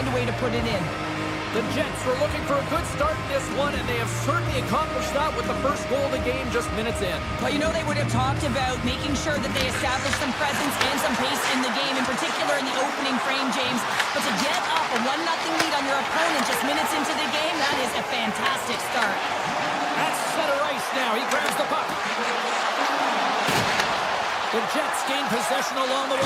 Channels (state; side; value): identical; both; correlation 1.00